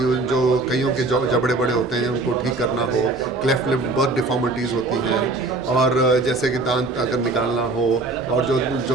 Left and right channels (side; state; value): left; quieter; 3.3 dB